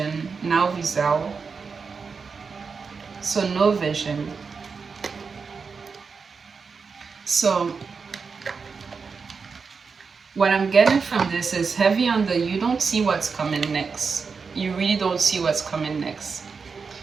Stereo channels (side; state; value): left; quieter; 5.2 dB